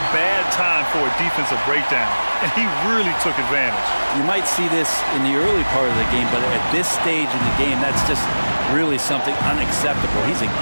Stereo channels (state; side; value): inverted; both; correlation -1.00